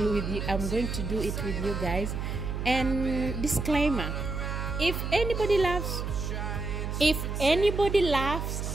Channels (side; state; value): right; noise; hum, 3 dB below the sound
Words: it with you guys. And disclaimer, if anybody laughs